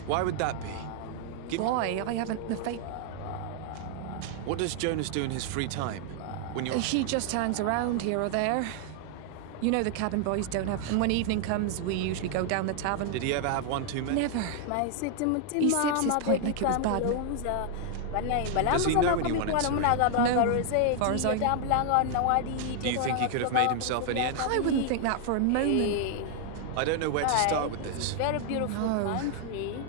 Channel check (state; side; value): different; both; correlation 0.00